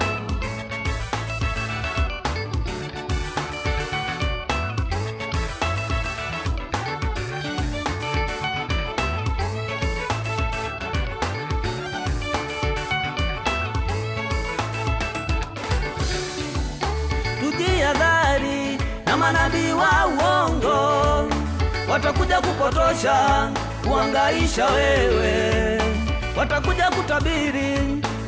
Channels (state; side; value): identical; both; correlation 1.00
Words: Tujihadhari na manabii wa uongo, watakuja kupotosha, kuhangaisha wewe. Watakuja kutabiri